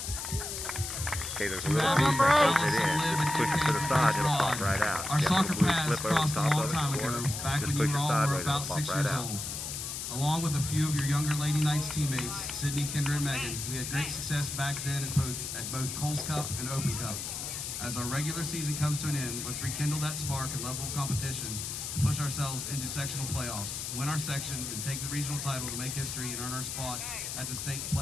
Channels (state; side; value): noise; left; hiss, 5 dB below the sound